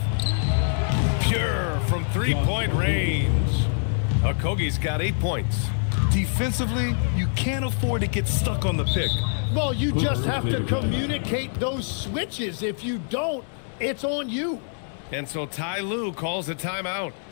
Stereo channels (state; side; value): silent; right; 60 dB below the other